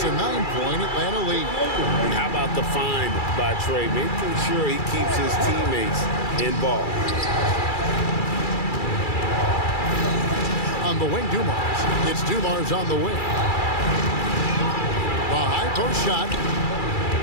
a 9-point Atlanta lead. And how about the find by Trey, making sure he keeps his teammates involved. On the wing, Dumars. It's Dumars on the wing. The high post shot.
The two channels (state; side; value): late; right; 2.3 ms